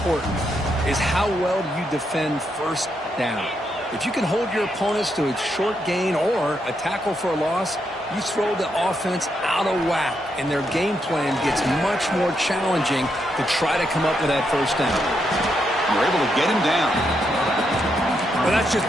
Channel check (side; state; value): both; normal; correlation 0.80